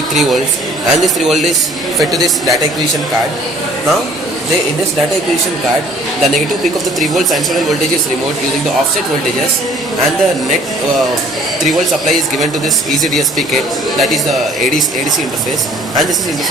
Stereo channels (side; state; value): both; normal; correlation 0.55